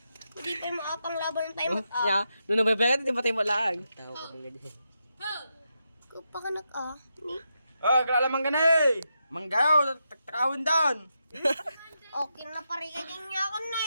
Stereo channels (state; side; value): inverted; both; correlation -0.85